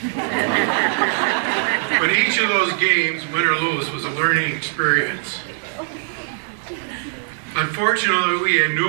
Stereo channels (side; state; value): left; silent; 62 dB below the other